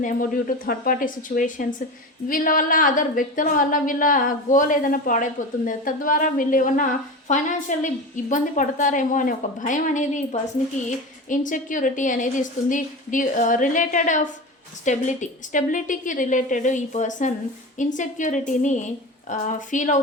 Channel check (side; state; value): both; normal; correlation 0.27